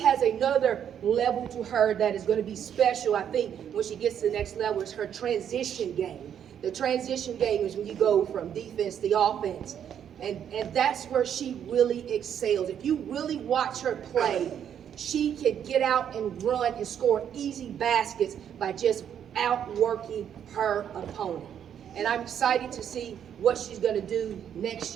has another level to her that is going to be special. I think when she gets to the next level is her transition game. The transition game is when you go from defense to offense. And that's where she really excels. If you really watch her play, she can get out and run and score easy baskets by just outworking her opponent. And I'm excited to see what she's going to do next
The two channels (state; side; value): quieter; left; 9.0 dB